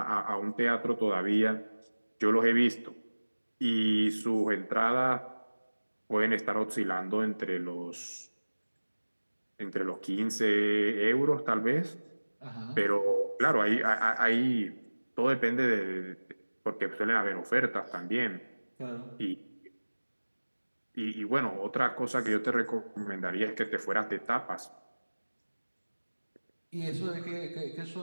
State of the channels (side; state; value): both; inverted; correlation -1.00